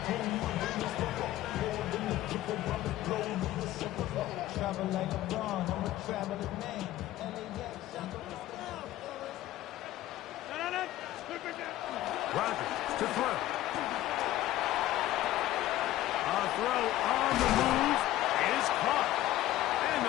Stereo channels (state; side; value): quieter; right; 14.8 dB